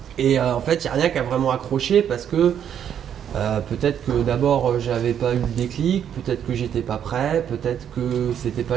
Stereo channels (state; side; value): quieter; left; 9.1 dB